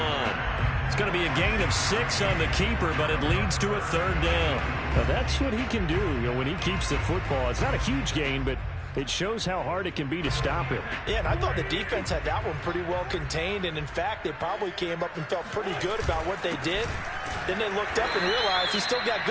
It's going to be a gain of 6 on the keeper, but it leads to a 3rd down. Now that's what he can do, when he keeps the football. It's not a huge gain, but it shows how hard it can be to stop him. Yeah, and I thought the defense had that one pretty well contained, and in fact, they probably came up and felt pretty good about what they did. Then they looked up and realized he still got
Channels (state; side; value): identical; both; correlation 1.00